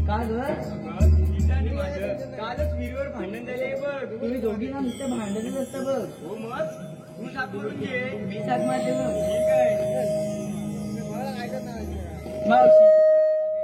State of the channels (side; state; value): both; identical; correlation 1.00